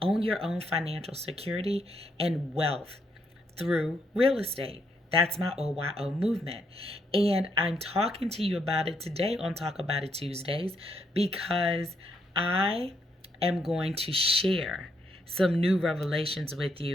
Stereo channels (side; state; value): both; normal; correlation 0.76